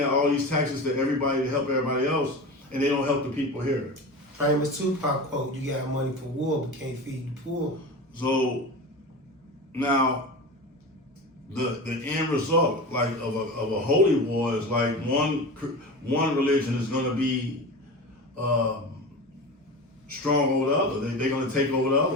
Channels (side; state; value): both; normal; correlation 0.29